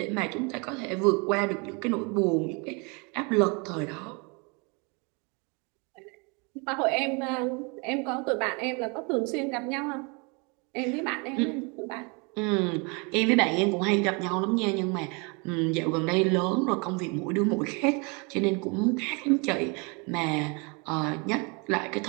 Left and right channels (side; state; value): left; quieter; 31.6 dB